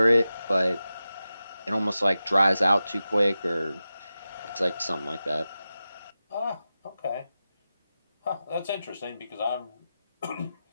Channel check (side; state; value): both; inverted; correlation -0.93